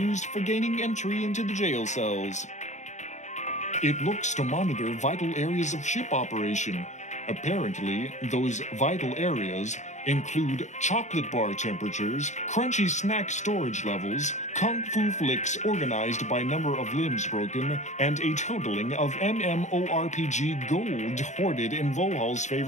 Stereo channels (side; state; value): right; late; 0.34 ms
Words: for gaining entry into the jail cells. It looks to monitor vital areas of ship operation. Apparently, those vital areas include chocolate bar temperatures, crunchy snack storage levels, kung fu flicks organized by number of limbs broken, and a totaling of MMORPG gold hoarded in Vohaul's